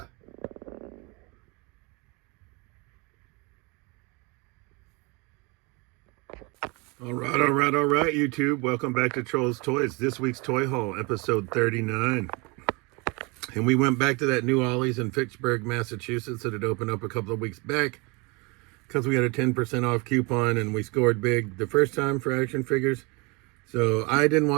All right, YouTube. Welcome back to Trolls Toys. This week's Toy Haul, episode 39. And we went back to that new Ollie's in Fitchburg, Massachusetts that had opened up a couple of weeks back because we had a 10% off coupon and we scored big the first time for action figures. So I didn't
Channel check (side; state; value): left; quieter; 28.5 dB